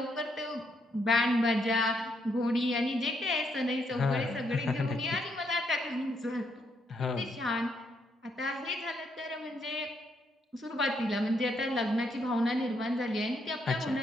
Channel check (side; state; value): both; normal; correlation 0.75